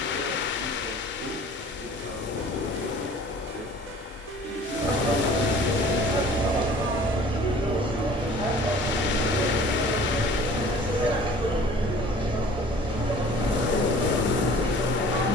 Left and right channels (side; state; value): both; normal; correlation 0.48